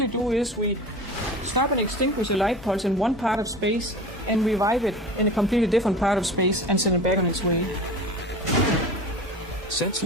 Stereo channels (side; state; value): both; normal; correlation 0.35